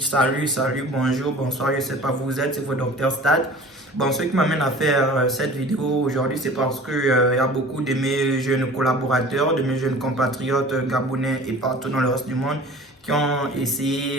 salut, bonjour, bonsoir, je sais pas où vous êtes, c'est votre docteur Stade. Bon, ce qui m'amène à faire cette vidéo aujourd'hui, c'est parce que y a beaucoup de mes jeunes collaborateurs, de mes jeunes compatriotes gabonais et partout dans le reste du monde qui ont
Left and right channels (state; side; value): normal; both; correlation 0.43